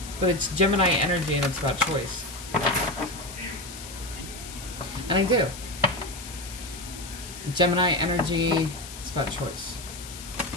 But it's Gemini energy, and it's about choice. And I do. Gemini energy, it's about choice.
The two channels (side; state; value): left; noise; hiss, 12 dB below the sound